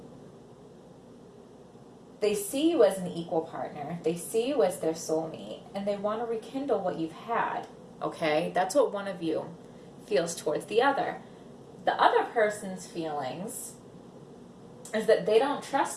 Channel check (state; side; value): identical; both; correlation 1.00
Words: They see you as an equal partner. They see you as their soulmate, and they want to rekindle what you've had, okay? That's what one of you feels towards the other. The other person's feelings is that they don't